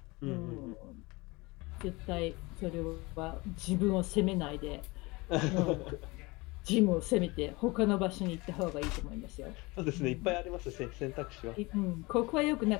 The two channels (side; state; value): right; quieter; 24.1 dB